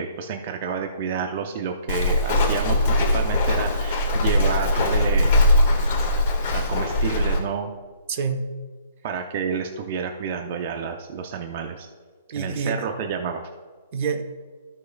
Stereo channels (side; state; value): both; inverted; correlation -0.58